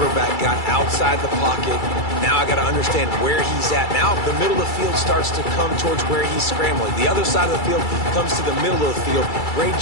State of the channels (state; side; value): late; right; 2.3 ms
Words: got outside the pocket. Now I got to understand where he's at. Now the middle of the field starts to come towards where he's scrambling. The other side of the field comes to the middle of the field. Great